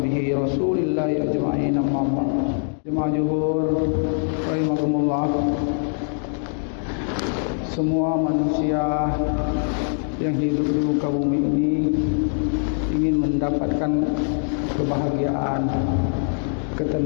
rasulillahi ajma'in. Jemaah zuhur rahimakumullah. Semua manusia yang hidup di muka bumi ini ingin mendapatkan kebahagiaan,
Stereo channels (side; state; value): right; silent; 63 dB below the other